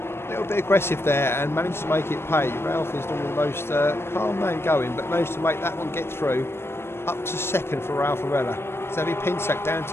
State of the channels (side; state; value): right; late; 0.12 ms